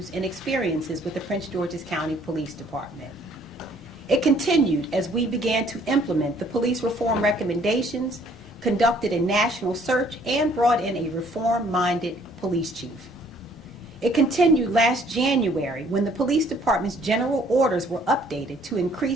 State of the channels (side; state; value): both; normal; correlation 0.61